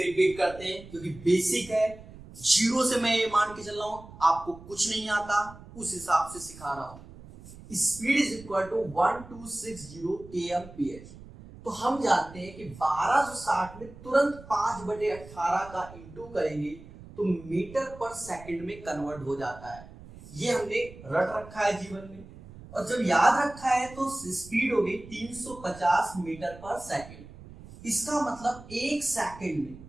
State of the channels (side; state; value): right; noise; rumble, 18 dB below the sound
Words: करते हैं, क्योंकि बेसिक है। जीरो से मैं ये मान के चल रहा हूं आपको कुछ नहीं आता, उस हिसाब से सिखा रहा हूं। Speed is equal to 1260 kmph। तो हम जानते हैं कि 1260 में तुरंत 5/18 का इंटू करेंगे तो मीटर पर सेकंड में कन्वर्ट हो जाता है। ये हमने रट रखा है जीवन में, और जब याद रखा है तो स्पीड हो गई 350 मीटर पर सेकंड। इसका मतलब एक सेकंड में